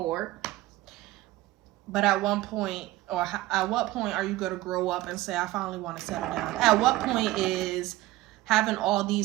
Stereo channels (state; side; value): quieter; left; 17.4 dB